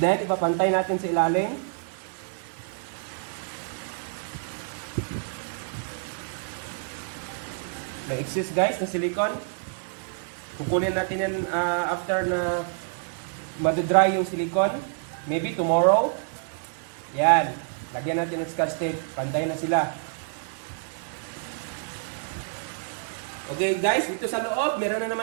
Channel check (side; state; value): left; silent; 60 dB below the other